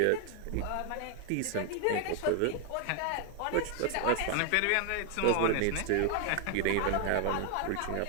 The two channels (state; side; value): different; both; correlation 0.00